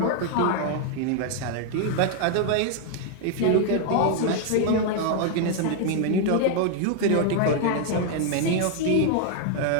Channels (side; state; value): both; different; correlation 0.00